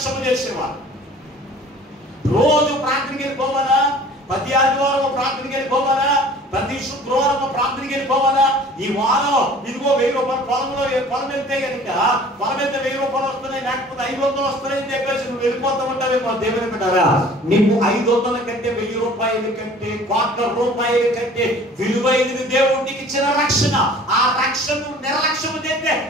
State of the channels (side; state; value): both; normal; correlation 0.48